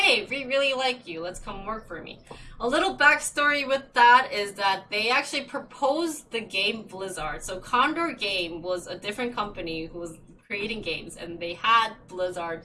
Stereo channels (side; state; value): both; identical; correlation 1.00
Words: we really like you. Let's come work for me. A little backstory with that is that they actually proposed the game Blizzard. So Condor Game was a different company who was creating games, and they had Blizzard,